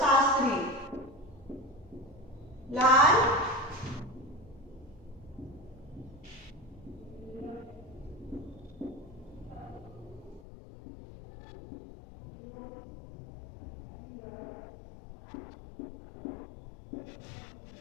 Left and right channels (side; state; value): right; drops out; at 10.4 s